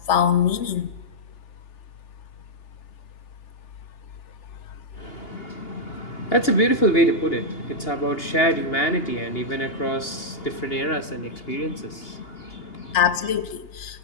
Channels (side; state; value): right; late; 2.8 ms